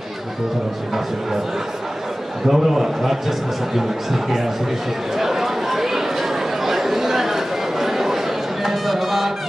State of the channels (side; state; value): both; normal; correlation 0.96